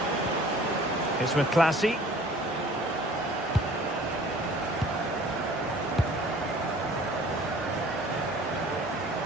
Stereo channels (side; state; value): both; normal; correlation 0.50